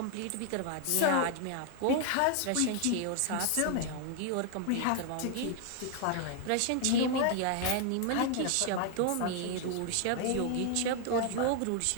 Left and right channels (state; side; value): different; both; correlation 0.00